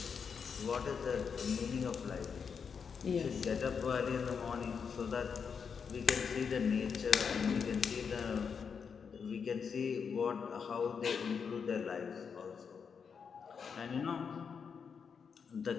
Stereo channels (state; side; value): quieter; right; 6.3 dB